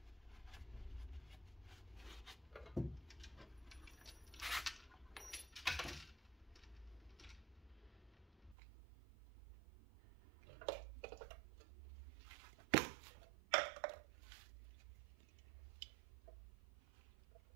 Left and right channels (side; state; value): left; drops out; at 8.6 s